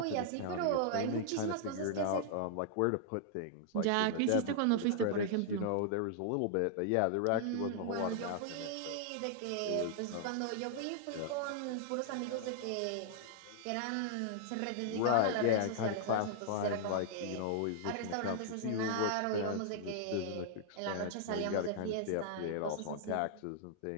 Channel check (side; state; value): both; different; correlation -0.01